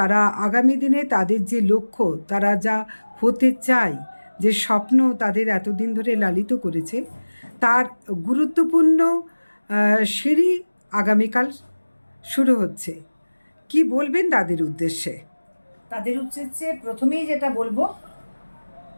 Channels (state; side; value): inverted; both; correlation -1.00